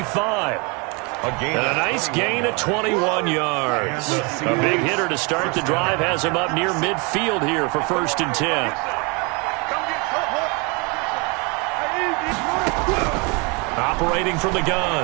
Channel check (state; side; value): quieter; left; 30.5 dB